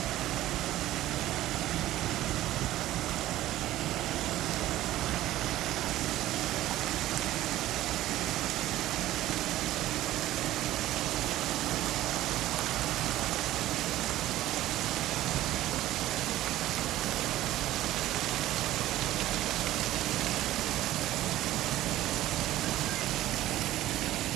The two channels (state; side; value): quieter; left; 14.9 dB